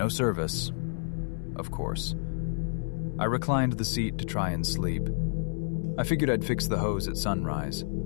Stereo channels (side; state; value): right; silent; 58 dB below the other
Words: service. Of course. I reclined the seat to try and sleep. I figured I'd fix the hose at sunrise.